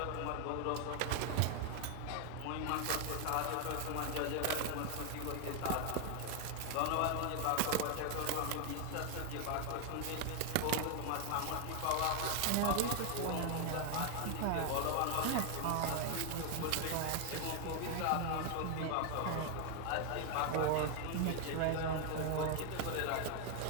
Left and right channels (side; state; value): both; different; correlation 0.00